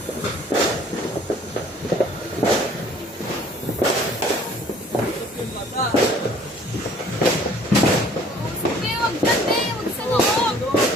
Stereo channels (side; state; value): both; normal; correlation 0.55